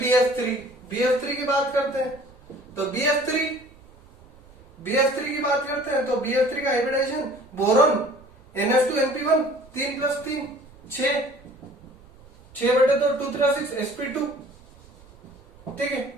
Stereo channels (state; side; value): noise; right; rumble, 25 dB below the sound